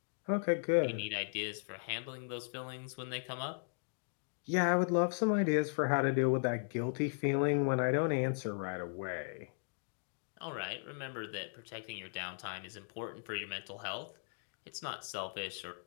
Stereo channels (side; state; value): right; silent; digital silence